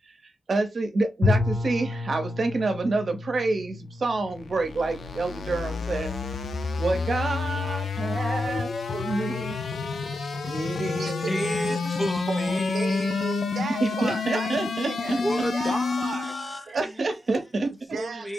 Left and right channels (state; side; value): normal; both; correlation 0.86